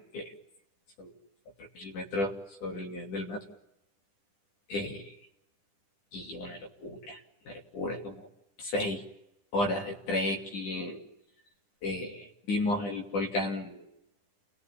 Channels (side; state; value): right; late; 10 ms